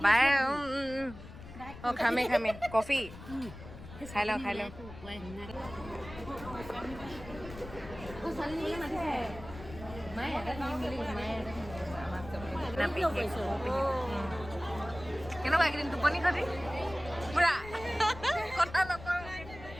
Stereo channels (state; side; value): noise; left; rumble, 14 dB below the sound